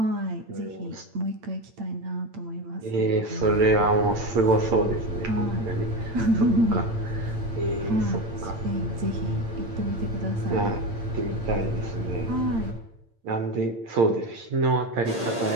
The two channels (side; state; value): left; late; 8.8 ms